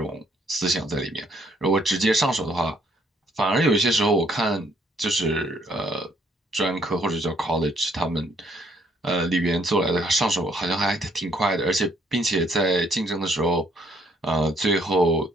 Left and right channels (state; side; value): normal; both; correlation 0.67